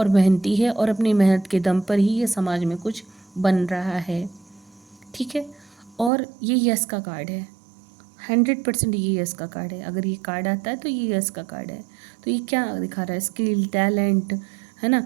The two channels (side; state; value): left; drops out; at 6.1 s